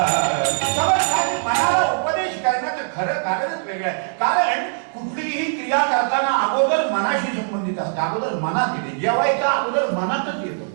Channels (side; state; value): left; silent; 65 dB below the other